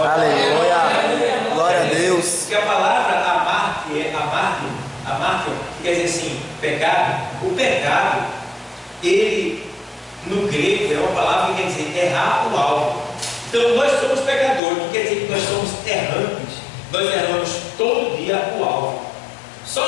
Glória a Deus. Porque a palavra amartio, quer dizer assim, pecado. O pecado, ele, no grego, é uma palavra que quer dizer errar o alvo. Então nós somos pecadores, que quer dizer que nós somos errantes. Nós erramos todo dia o alvo.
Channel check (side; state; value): right; drops out; at 14.6 s